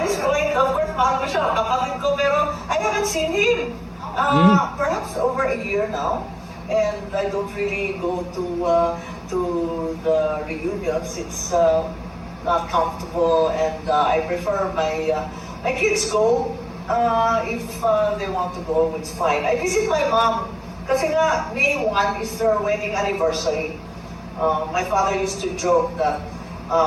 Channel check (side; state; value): both; identical; correlation 1.00